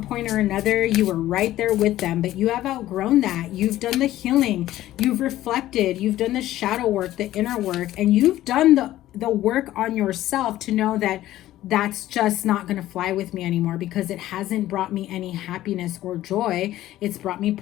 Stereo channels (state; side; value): quieter; right; 14.4 dB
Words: point or another, you were right there with them, but you have outgrown that. You've done the healing, you've reflected, you've done the shadow work, the inner work, and you've done the work on yourself to know that that's just not going to fly with me anymore, because it hasn't brought me any happiness or joy. It's brought me